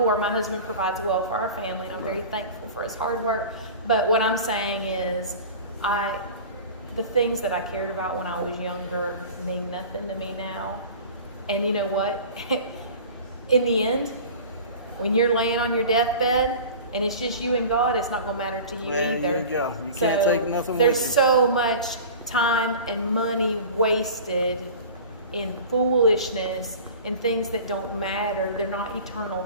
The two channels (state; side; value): inverted; both; correlation -0.38